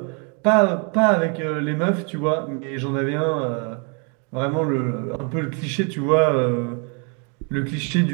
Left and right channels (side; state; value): left; quieter; 35.8 dB